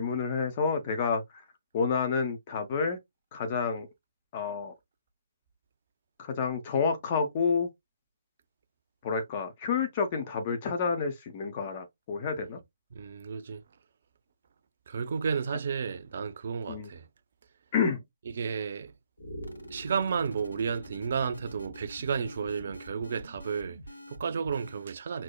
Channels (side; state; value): both; inverted; correlation -0.61